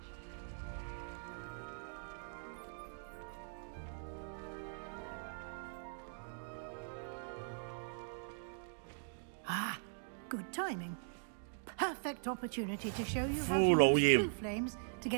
Ah, good timing. Perfect opportunity to show you how to Full use OEM. blue flames to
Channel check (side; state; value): left; silent; digital silence